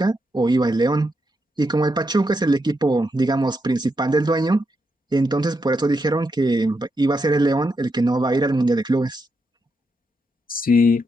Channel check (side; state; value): both; normal; correlation 0.82